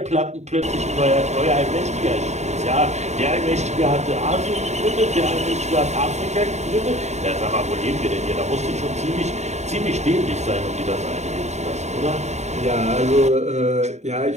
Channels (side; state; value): left; late; 0.33 ms